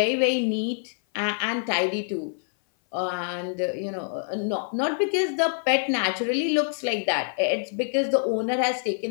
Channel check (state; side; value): silent; right; 57 dB below the other